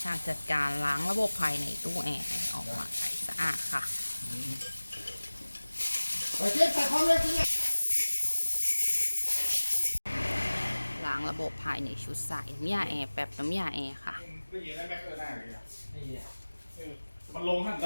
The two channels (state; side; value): inverted; both; correlation -1.00